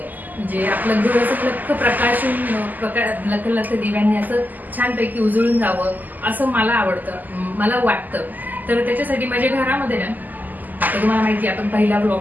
म्हणजे आपलं घर असं लख दिव्यांनी असं छानपैकी उजळून जावं असं मला आवडतं, मला वाटतं. तर त्याच्यासाठी माझ्या घरामध्ये ना, आता तुम्हाला माहिती आहे आपण पहिला ब्लॉग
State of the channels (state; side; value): late; left; 0.084 ms